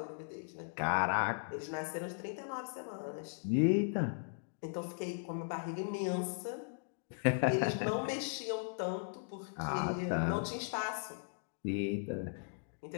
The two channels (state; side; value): silent; right; digital silence